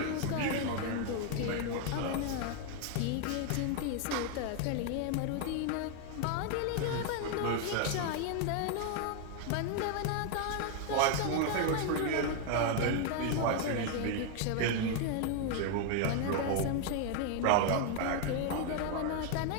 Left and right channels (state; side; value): different; both; correlation 0.01